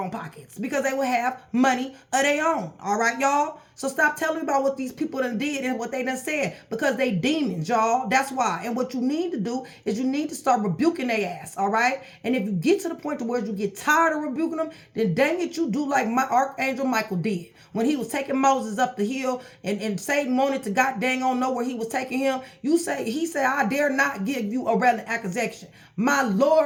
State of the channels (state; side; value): identical; both; correlation 1.00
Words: pockets because they would have money of their own, all right, y'all? So stop telling me about what these people done did and what they done said because they demons, y'all. That's why. And what you need to do is you need to start rebuking their ass, all right? And if you get to the point to where you get tired of rebuking them, then dang it, you do like my Archangel Michael did. When he was taking Moses up the hill and Satan wanted to god dang on know where he was taking him, he said, I dare not give you a relevant accusation. My